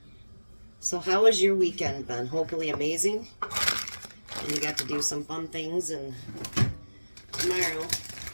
So how was your weekend, Ben? Hopefully amazing. And you got to do some fun things. And tomorrow,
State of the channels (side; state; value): both; inverted; correlation -1.00